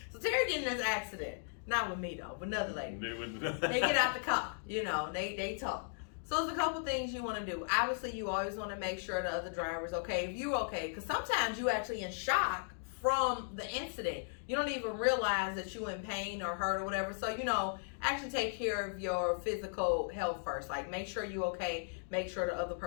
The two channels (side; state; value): right; silent; digital silence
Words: getting in this accident. Not with me though, but another lady. They get out the car, they talk. So there's a couple things you want to do. Obviously, you always want to make sure the other driver's okay. If you're okay, because sometimes you actually in shock from the incident. You don't even realize that you're in pain or hurt or whatever. So, actually take care of your physical health first. Like, make sure you're okay. Make sure the other